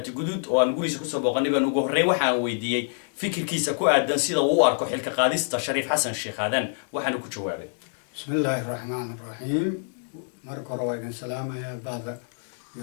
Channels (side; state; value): right; silent; 61 dB below the other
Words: Guduud oo aan gurigiisa kusoo booqanay baan ugu horreyn waxaan weydiiyay fikirkiisa ku aadan sida uu u arko xilka qaadista Shariif Xasan Sheekh Aadan waxaana ku jawaabay Bismillahir Rahmanir Rahim marka hore waan salaamayaa baada